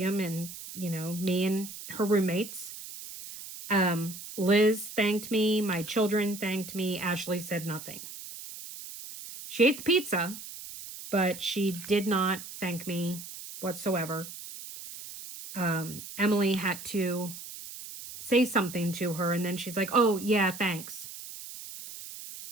and, you know, me and her roommates. Liz thanked me. My children thanked me. Ashley said nothing. She ate the pizza, but she did not thank me whatsoever. Emily had to say something to her, and then she's like, oh, yeah, thanks.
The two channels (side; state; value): right; noise; hiss, 12 dB below the sound